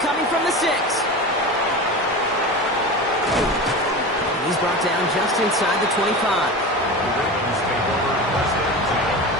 from the 6. He's brought down just inside the 25.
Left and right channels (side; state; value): both; normal; correlation 0.29